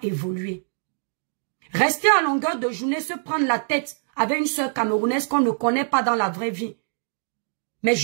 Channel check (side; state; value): left; silent; digital silence